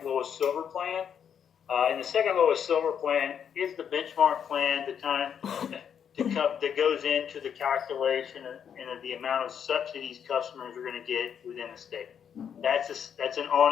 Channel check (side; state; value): right; quieter; 8.1 dB